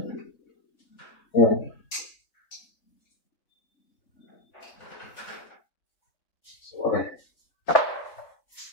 Ayan. So, okay.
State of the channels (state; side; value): late; right; 3.4 ms